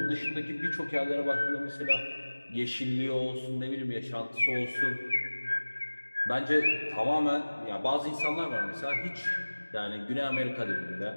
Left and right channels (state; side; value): inverted; both; correlation -1.00